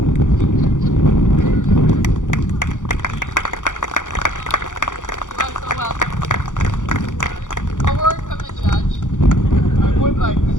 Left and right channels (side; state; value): right; late; 0.87 ms